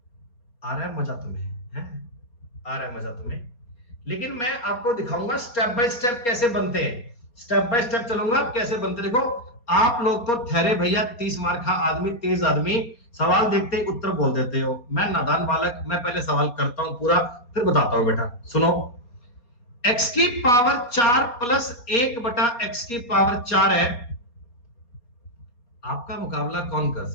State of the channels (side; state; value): right; late; 4.2 ms